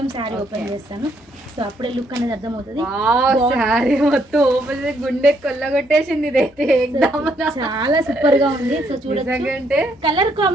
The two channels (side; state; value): both; normal; correlation 0.72